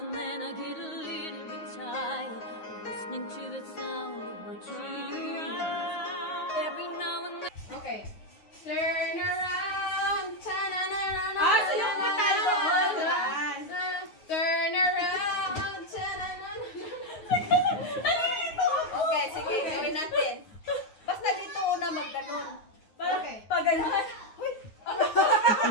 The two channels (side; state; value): right; late; 9.5 ms